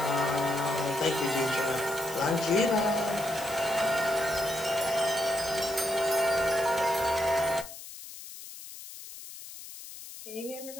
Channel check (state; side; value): noise; left; hiss, 13 dB below the sound